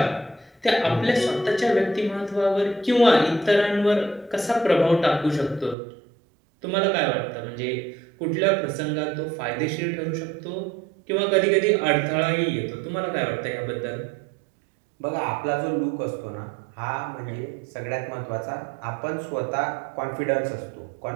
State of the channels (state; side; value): drops out; left; at 5.8 s